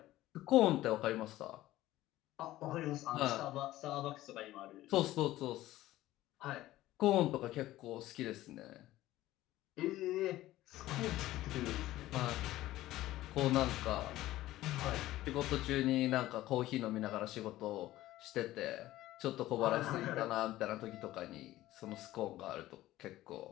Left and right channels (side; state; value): right; quieter; 15.7 dB